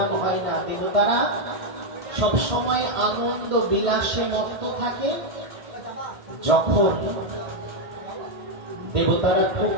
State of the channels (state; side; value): late; left; 1.6 ms